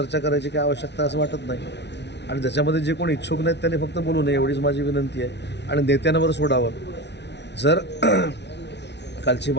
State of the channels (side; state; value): right; late; 0.50 ms